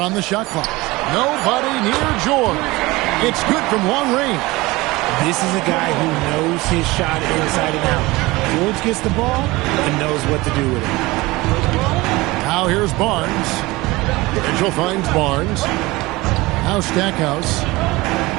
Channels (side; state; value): left; quieter; 21.1 dB